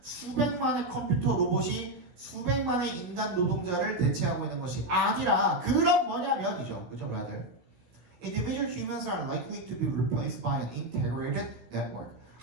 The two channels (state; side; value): late; left; 16 ms